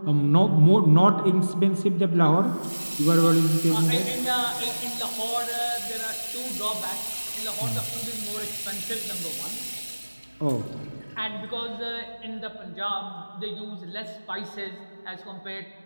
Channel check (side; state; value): both; inverted; correlation -1.00